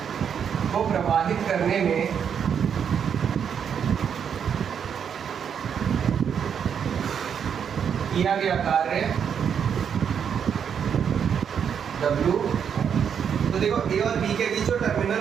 को प्रवाहित करने में किया गया कार्य W। तो देखो A और B के बीच जो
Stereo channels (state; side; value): quieter; left; 7.7 dB